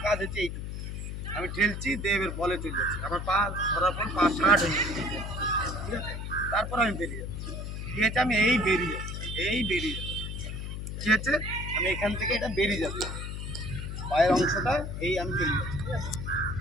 কাজ হচ্ছে এইটুকু আমি ঠেলছি, দেবের বলে চলে যাচ্ছি, আমার পা ধরার পর পা শার্ট হয়ে যাচ্ছে। ঠিক আছে, তারপর আমি বেরিয়ে যাচ্ছি। ঠিক আছে, আমি এই বেরিয়ে যাচ্ছি, এই বেরিয়ে যাচ্ছি। ঠিক আছে, আমি এখান থেকে এটা বেরিয়ে যাচ্ছি, পায়ের অংশটা এই আমি চলে যাচ্ছি। ঠিক আছে,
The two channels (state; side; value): noise; left; hum, 6 dB below the sound